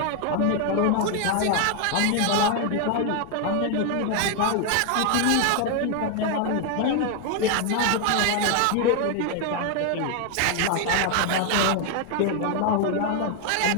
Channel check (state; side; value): different; both; correlation 0.01